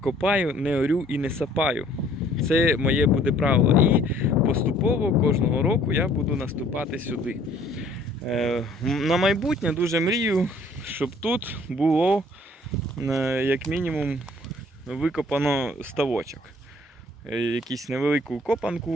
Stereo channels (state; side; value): normal; both; correlation 0.57